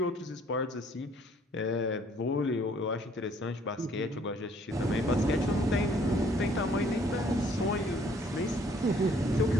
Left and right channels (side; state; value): both; normal; correlation 0.62